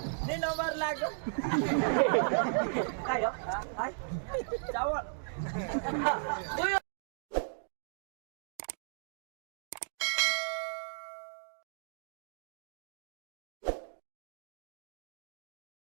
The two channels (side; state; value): left; silent; digital silence